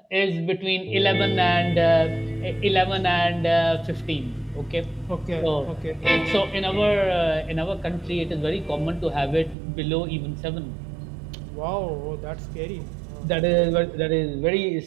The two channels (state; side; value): drops out; left; at 9.6 s